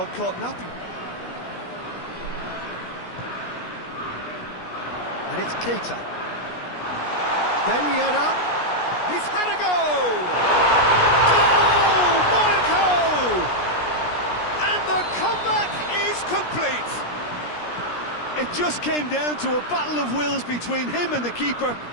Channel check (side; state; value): right; late; 17 ms